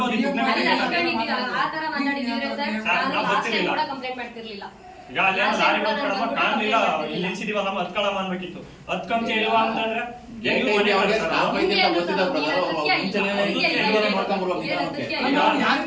ಆ ತರ ಮಾತಾಡಿದ್ರೆ ಸರ್ ನಾನು ಲಾಸ್ಟ್ ಟೈಮ್ ಕೂಡ ಕಂಪ್ಲೇಂಟ್ ಮಾಡ್ತಿರ್ಲಿಲ್ಲ. ಈಗ ಅಲ್ಲಿ ಲಾರಿ ಬಂದ್ಕೊಳಮ್ಮ ಕಾಣ್ಲಿಲ್ಲ, ಇಲ್ಲಿ ನಿಲ್ಸಿದೀವಲ್ಲಮ್ಮ ಹತ್ಕೊಳಮ್ಮ ಅನ್ಬೇಕಿತ್ತು. ಹತ್ಕೊಂತ ಇಲ್ವಾ ಅಂತಂದ್ರೆ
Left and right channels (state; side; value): identical; both; correlation 1.00